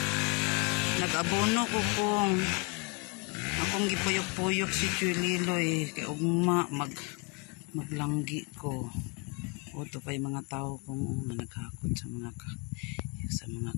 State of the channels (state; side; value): quieter; right; 32.6 dB